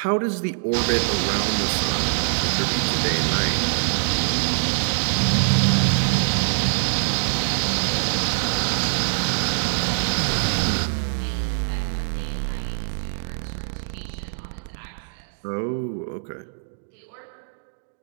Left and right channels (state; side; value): silent; left; digital silence